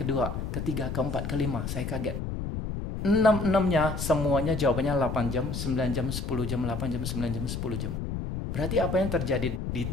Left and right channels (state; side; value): noise; left; rumble, 4 dB below the sound